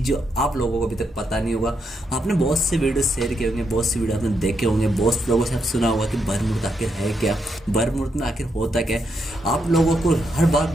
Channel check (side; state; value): both; normal; correlation 0.80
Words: जो आप लोगों को अभी तक पता नहीं होगा। आपने बहुत से वीडियो शेयर किए होंगे, बहुत से वीडियो आपने देखे होंगे, बहुत से लोगों से आप सुना होगा कि बर्मुड आखिर है क्या, बर्मुड में आखिर होता क्या है। आप लोगों को हर बार